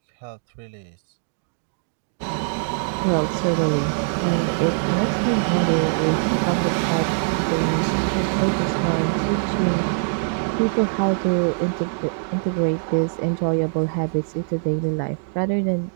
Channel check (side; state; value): left; silent; digital silence